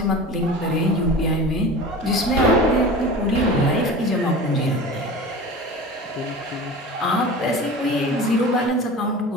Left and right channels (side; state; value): both; normal; correlation 0.35